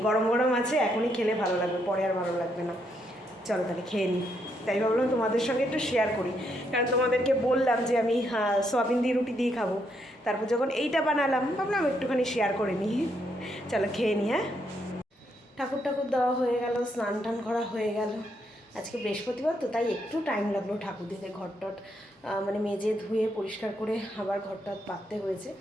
গরম গরম আছে, এখনই খেলে ভালো লাগবে, পরে আর ভালো লাগবে না। চলো তাহলে খেয়ে নিই, তাই ভাবলাম তোমাদের সঙ্গে একটু শেয়ার করি, কারণ তোমাদেরকে বললাম যে আমি সয়াবিন দিয়ে রুটি দিয়ে খাবো, তারপর যখন এইটা বানালাম ভাবলাম একটুখানি শেয়ার করে নিই। চলো খেয়ে নিই। হ্যাঁ, ঠাকুর দেওয়া হয়ে গেল, স্নান টান করা হয়ে গেল। আজকে বৃহস্পতিবার তো, তাই একটু টাইম লাগলো ঠাকুর দিতে, ঘরটট মানে মেজে ধুয়ে পরিষ্কার করে আবার ঘরটা পাততে হয়েছে,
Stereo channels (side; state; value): both; normal; correlation 0.76